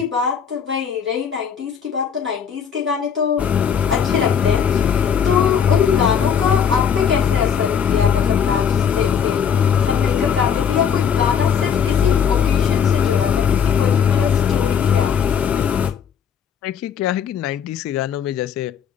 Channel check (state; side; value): quieter; right; 7.5 dB